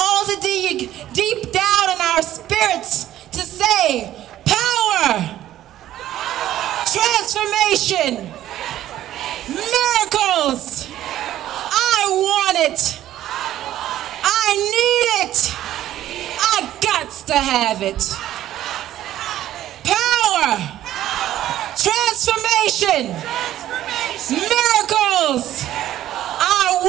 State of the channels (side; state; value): left; quieter; 13.0 dB